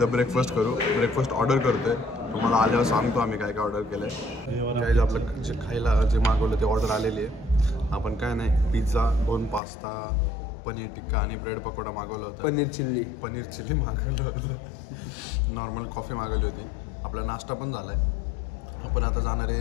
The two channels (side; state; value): right; drops out; at 9.6 s